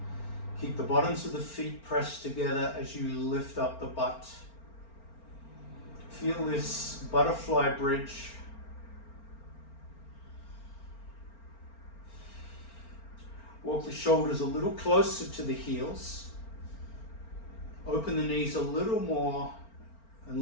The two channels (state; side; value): late; right; 4.4 ms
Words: Keep the bottoms of the feet pressed together as you lift up the butt. Feel this butterfly bridge. Walk the shoulders a little closer to the heels. Open the knees a little more